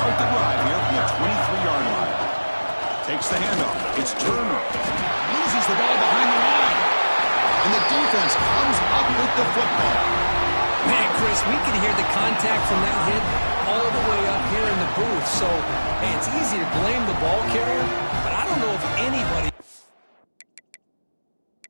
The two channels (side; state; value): both; inverted; correlation -1.00